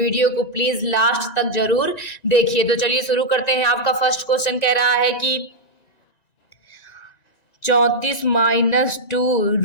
को प्लीज़ लास्ट तक जरूर देखिए। तो चलिए शुरू करते हैं। आपका फर्स्ट क्वेश्चन कह रहा है कि 34 माइनस 2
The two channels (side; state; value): right; late; 1.9 ms